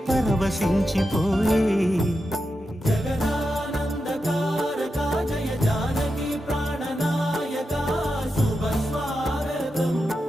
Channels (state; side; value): normal; both; correlation 0.89